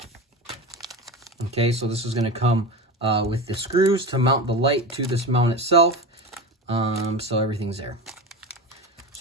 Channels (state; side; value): normal; both; correlation 0.25